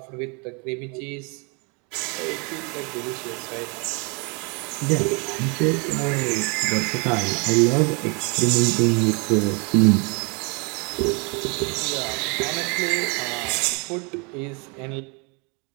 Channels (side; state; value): left; quieter; 32.5 dB